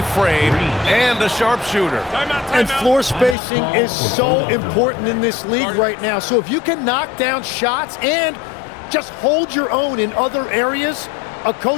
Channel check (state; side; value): drops out; right; at 3.4 s